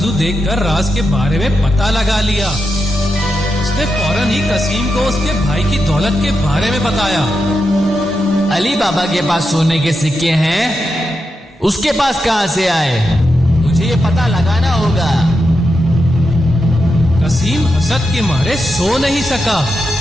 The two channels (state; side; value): normal; both; correlation 0.87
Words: देखकर राज के बारे में पता लगा लिया। उसने फौरन ही कसीम को उसके भाई की दौलत के बारे में बताया। अली बाबा के पास सोने के सिक्के हैं, उसके पास कहां से आए? मुझे ये पता लगाना होगा। कसीम हसद के मारे सो नहीं सका